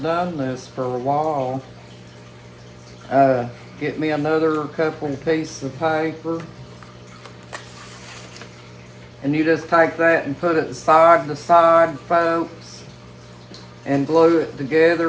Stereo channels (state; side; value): identical; both; correlation 1.00